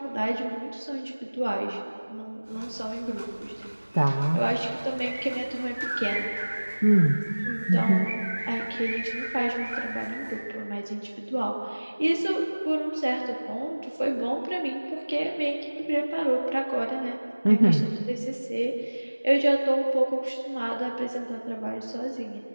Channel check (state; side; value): inverted; both; correlation -1.00